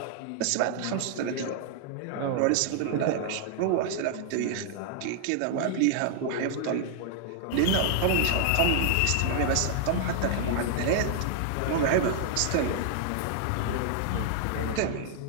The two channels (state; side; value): different; both; correlation 0.00